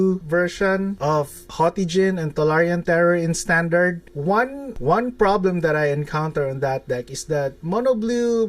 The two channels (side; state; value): both; identical; correlation 1.00